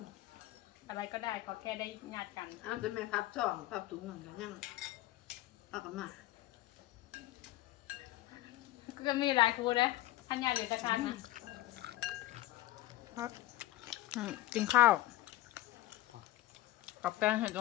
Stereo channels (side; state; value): right; quieter; 16.5 dB